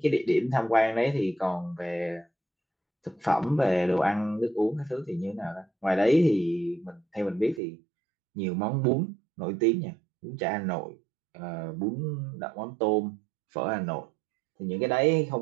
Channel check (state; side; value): drops out; left; at 7.6 s